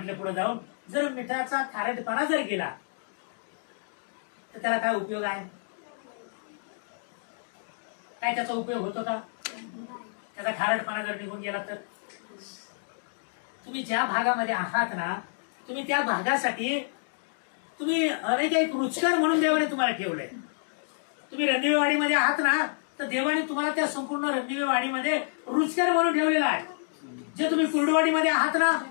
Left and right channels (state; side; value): silent; right; digital silence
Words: पुढे जाऊन, जर मिठाचा खारटपणा जर गेला तर त्याला काय उपयोग आहे? काय त्याचा उपयोग होतो का? त्याचा खारटपणा जर निघून गेला तर तुम्ही ज्या भागामध्ये आहात ना, तुम्ही त्या भागासाठी तुम्ही अनेक एक रुचकर म्हणून देवाने तुम्हाला ठेवले. तुम्ही रणदिवेवाडीमध्ये आहात ना, तर देवाने तुम्हाला त्या संपूर्ण रणदिवेवाडीमध्ये रुचकर म्हणून ठेवलेला आहे. जे तुम्ही कुर्डवाडीमध्ये आहात ना,